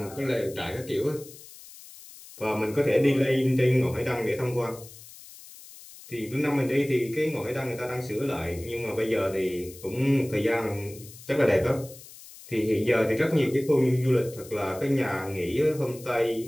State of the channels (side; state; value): left; noise; hiss, 18 dB below the sound